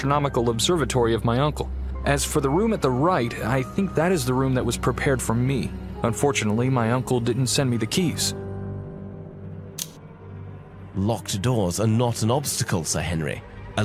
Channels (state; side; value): identical; both; correlation 1.00